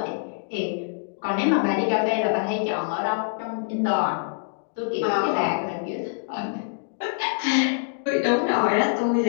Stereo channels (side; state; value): right; silent; digital silence